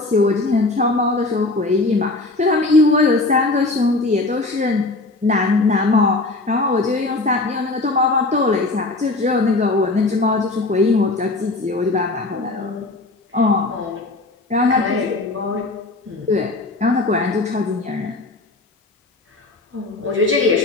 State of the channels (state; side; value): quieter; right; 3.2 dB